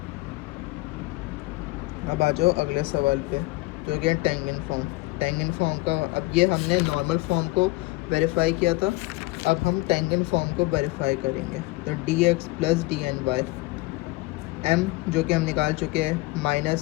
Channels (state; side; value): quieter; right; 20.8 dB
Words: अब आ जाओ अगले सवाल पे, जो कि है टेंजेंट फॉर्म। टेंजेंट फॉर्म का, अब ये हमने नॉर्मल फॉर्म को वेरीफाई किया था, अब हम टेंजेंट फॉर्म को वेरीफाई करेंगे। तो D X plus D N Y, M जो कि हम निकाल चुके हैं